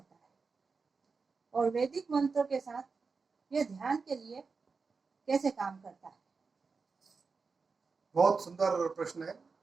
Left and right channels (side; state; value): left; quieter; 4.7 dB